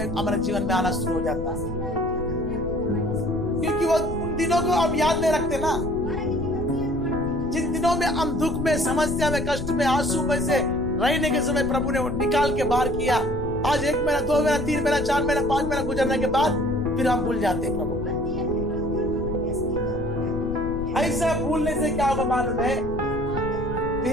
हमारे जीवन में आना शुरू हो जाता है, क्योंकि वो उन दिनों को अब याद नहीं रखते ना, जिन दिनों में हम दुख में, समस्या में, कष्ट में, आंसू में से रहने के समय प्रभु ने निकाल के बाहर किया। आज 1 महीना, 2 महीना, 3 महीना, 4 महीना, 5 महीना गुजरने के बाद फिर हम भूल जाते हैं प्रभु। ऐसा भूलने से क्या होगा मालूम है?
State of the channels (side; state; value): left; noise; rumble, 8 dB below the sound